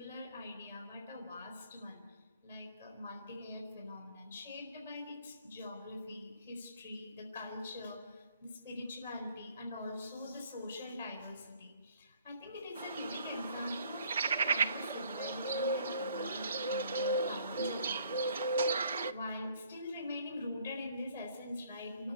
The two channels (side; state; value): both; inverted; correlation -0.61